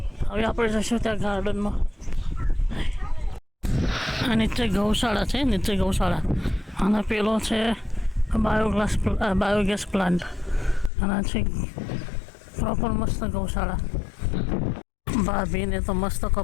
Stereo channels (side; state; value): right; drops out; at 10.9 s